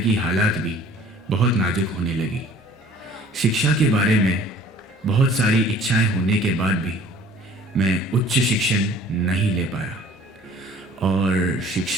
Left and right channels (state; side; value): normal; both; correlation 0.51